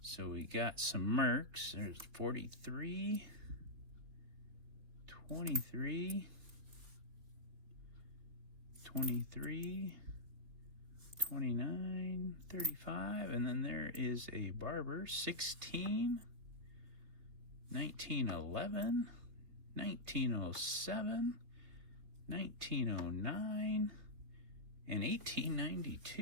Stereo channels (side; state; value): left; late; 3.6 ms